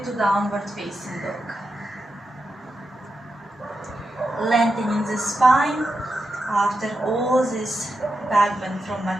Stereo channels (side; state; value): both; normal; correlation 0.88